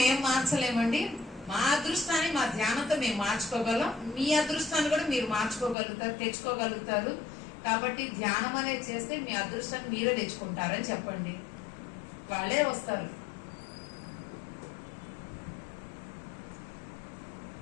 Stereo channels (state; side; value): drops out; right; at 5.8 s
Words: మేము మార్చలేమండి, మా అదృష్టాన్ని మా ధ్యానంతో మేము మార్చుకోగలం. మీ అదృష్టాన్ని కూడా మీరు మార్చుకోగలుగుతారు, తెచ్చుకోగలుగుతారు. కాబట్టి ధ్యానం అనేది చేస్తే మీ అదృష్టాన్ని మీరే తెచ్చుకుంటారని చెప్పండి. వాళ్ళే వస్తారు.